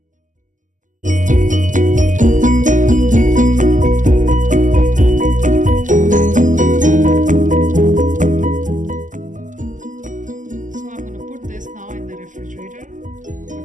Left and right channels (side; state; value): left; late; 0.37 ms